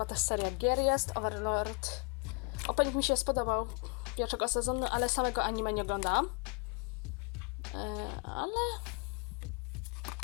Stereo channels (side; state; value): right; quieter; 32.6 dB